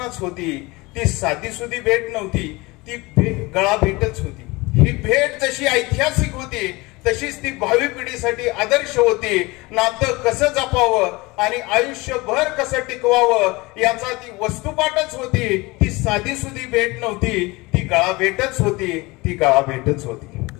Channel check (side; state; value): right; quieter; 23.2 dB